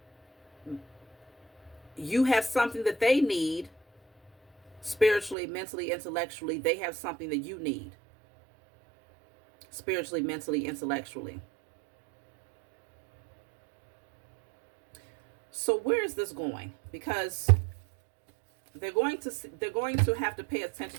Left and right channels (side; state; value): left; drops out; at 5.4 s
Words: You have something that they need spiritually, mentally, intellectually. They have something that you need spiritually, mentally, intellectually. So where is this going? Because they're going to have to pay